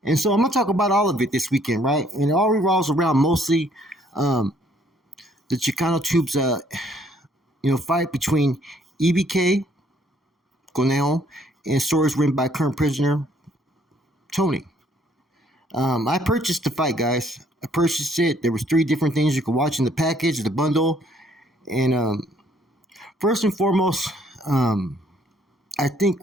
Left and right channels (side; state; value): both; normal; correlation 0.64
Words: And so I'm going to talk about all of it this weekend, right? And it all revolves around mostly the Chicano Tubes, fight between EBK, Coneo, and stories written by current prisoner Tony. I purchased the fight, guys. I purchased it. There was 3 different things you could watch in the package, the bundle. And first and foremost, I think